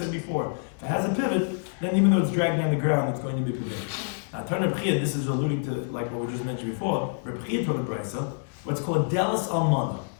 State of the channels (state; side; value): silent; right; digital silence